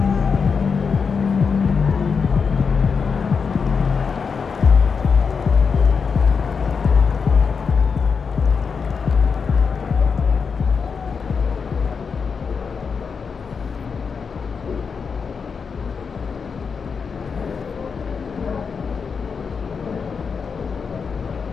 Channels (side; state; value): right; quieter; 5.7 dB